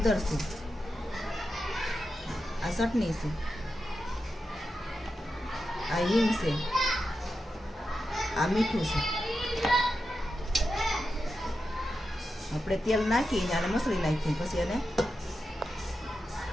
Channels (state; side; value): normal; both; correlation 0.89